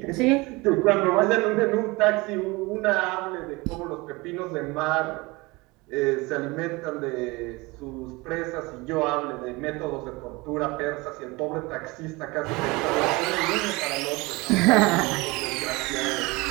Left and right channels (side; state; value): left; quieter; 23.8 dB